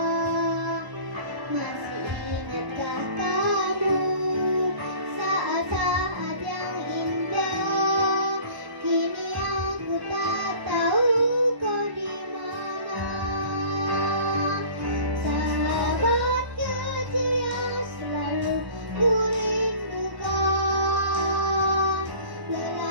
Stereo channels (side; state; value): left; late; 1.1 ms